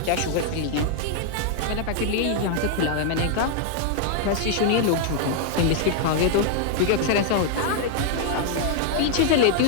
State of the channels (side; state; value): both; different; correlation 0.00